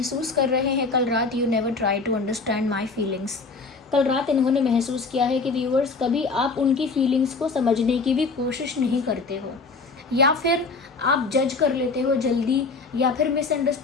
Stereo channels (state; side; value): quieter; right; 4.2 dB